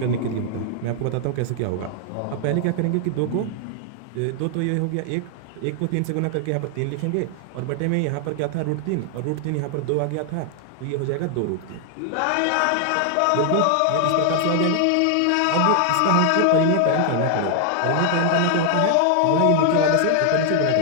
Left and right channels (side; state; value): both; different; correlation 0.00